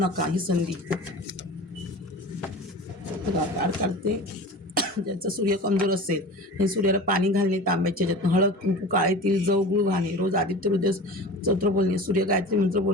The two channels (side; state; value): both; normal; correlation 0.36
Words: ही संधी. काढ काढते. ज्याचा सूर्य कमजोर असेल हे सूर्याला पाणी घालणे, तांब्याच्या ह्याच्यातून हळद कुंकू काळे तिळ जव गुळ घालणे, रोज आदित्य हृदय स्तोत्र बोलणे, सूर्य गायत्री मंत्र